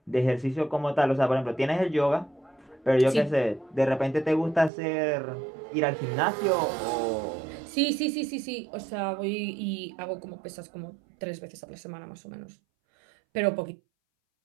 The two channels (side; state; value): left; drops out; at 4.7 s